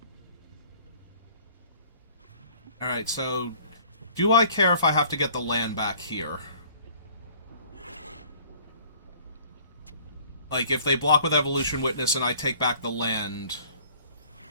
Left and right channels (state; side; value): inverted; both; correlation -0.53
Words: Alright, so... Do I care if I have to get the land back here? Like, if they block with Evolution Witness and I take back the land...